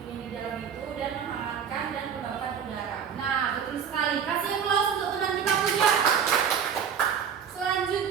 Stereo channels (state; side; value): quieter; left; 7.5 dB